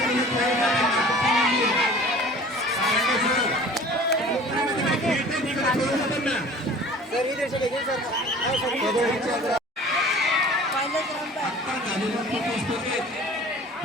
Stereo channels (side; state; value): both; normal; correlation 0.45